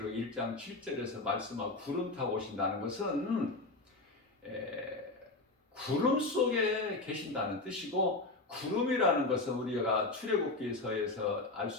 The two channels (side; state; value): right; quieter; 3.2 dB